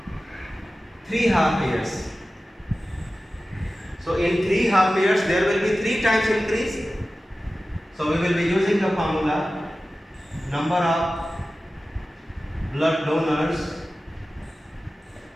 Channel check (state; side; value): normal; both; correlation 0.95